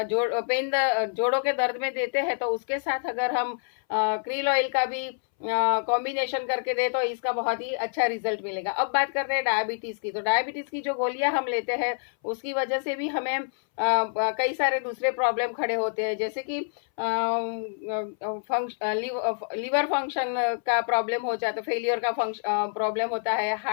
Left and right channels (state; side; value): silent; right; 60 dB below the other